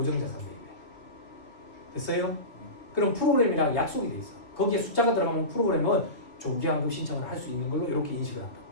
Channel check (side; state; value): right; late; 2.5 ms